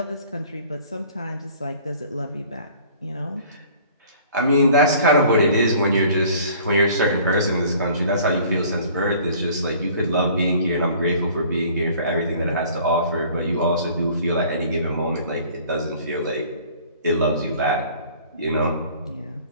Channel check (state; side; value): inverted; both; correlation -0.51